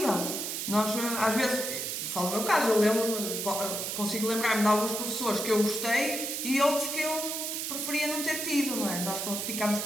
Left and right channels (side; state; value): right; noise; hiss, 3 dB below the sound